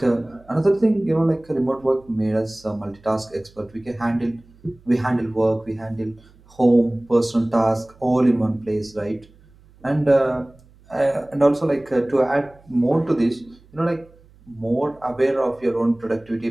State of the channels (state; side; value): noise; right; hum, 27 dB below the sound